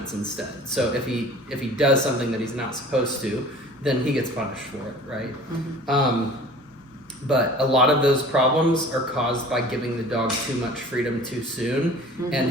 instead. So if he does something that he's not supposed to, then he gets punished for it, right? But a lot of those problems are caused by giving the dog too much freedom too soon, and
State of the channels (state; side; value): normal; both; correlation 0.45